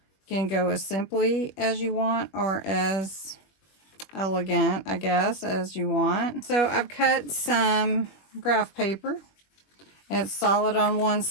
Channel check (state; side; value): late; right; 21 ms